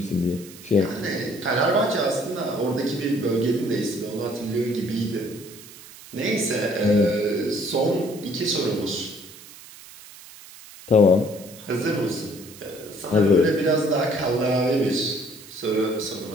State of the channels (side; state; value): right; noise; hiss, 18 dB below the sound